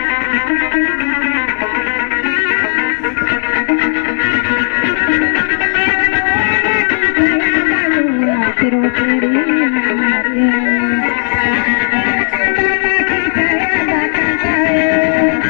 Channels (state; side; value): silent; right; 62 dB below the other